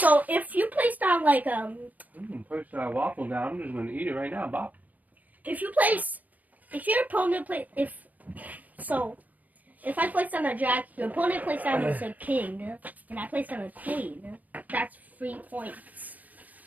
if you place down like Push that waffle down. I'm just gonna eat it right now, Bob. if your opponent if I place down a jack, your opponent plays down a king, and I place down a queen, that's 3 points.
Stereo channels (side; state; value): left; late; 0.079 ms